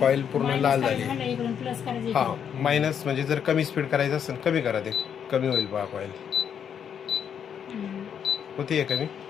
कॉईल पूर्ण लाल झाली. हा मायनस म्हणजे जर कमी स्पीड करायचं असेल कमी करा, ते कमी होईल बघा कॉईल. होती कमी.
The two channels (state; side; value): quieter; right; 8.1 dB